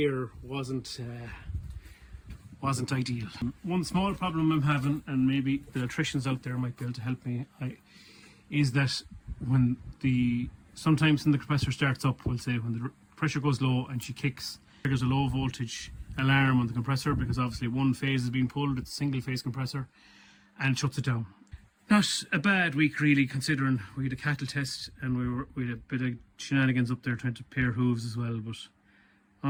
wasn't ideal. One small problem I'm having, and maybe the electricians out there might be able to help me, is that when sometimes when the compressor starts up, we'll say when the pressure goes low and she kicks, there's a low voltage alarm on the compressor because obviously one phase is being pulled, it's a single phase compressor, and it shuts it down. Not a bad week really, considering we had a cattle test and we had a bit of shenanigans up there trying to pair hooves as well, but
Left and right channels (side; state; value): both; identical; correlation 1.00